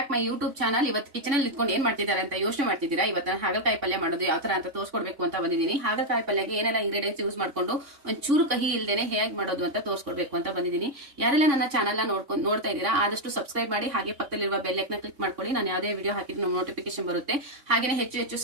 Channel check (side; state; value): left; late; 3.5 ms